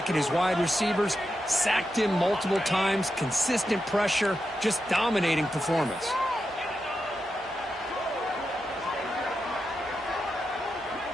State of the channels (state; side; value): normal; both; correlation 0.88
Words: and his wide receivers. Sacked him multiple times. Consistent pressure. Just dominating performance.